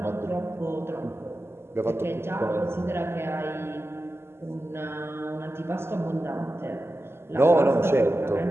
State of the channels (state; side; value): late; left; 0.12 ms